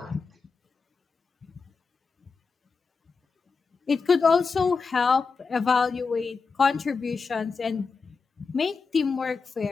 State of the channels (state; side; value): quieter; right; 4.8 dB